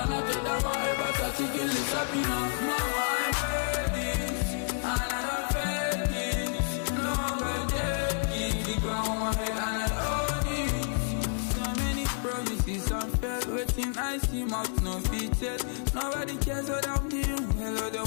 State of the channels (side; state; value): right; silent; digital silence